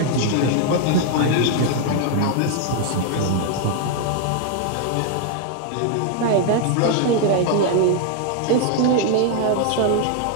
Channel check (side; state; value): both; different; correlation 0.00